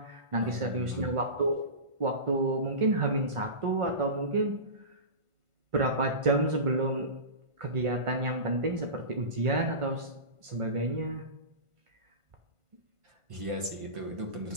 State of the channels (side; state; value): left; late; 1.5 ms